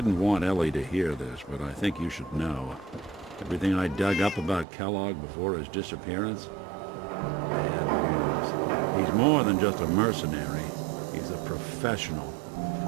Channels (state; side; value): drops out; left; at 4.7 s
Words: want Ellie to hear this, but I think you should know. Everything I dug up about Kellogg before his disappearance? Bad news. He's more than just a mercenary. He's a professional.